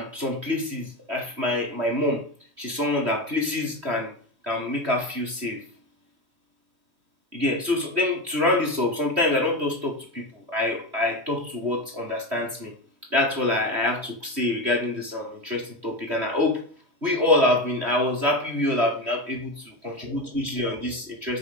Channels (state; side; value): late; left; 3.1 ms